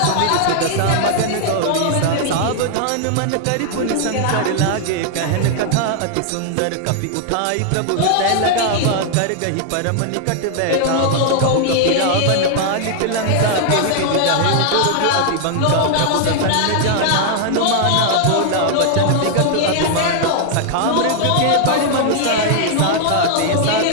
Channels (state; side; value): different; both; correlation 0.00